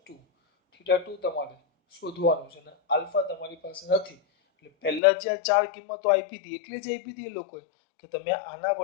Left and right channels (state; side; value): drops out; right; at 5.0 s